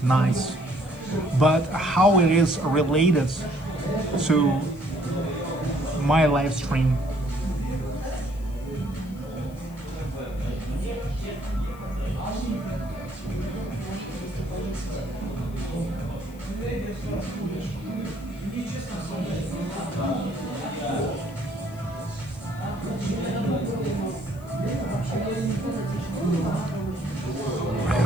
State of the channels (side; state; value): left; noise; hiss, 25 dB below the sound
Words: nice. But how it is related to my live stream?